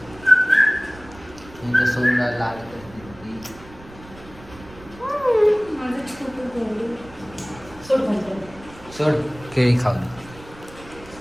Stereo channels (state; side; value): noise; right; rumble, 20 dB below the sound